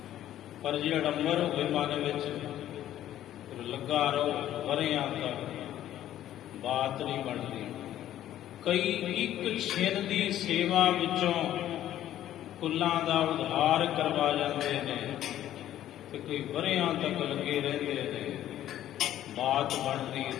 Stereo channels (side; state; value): right; quieter; 12.3 dB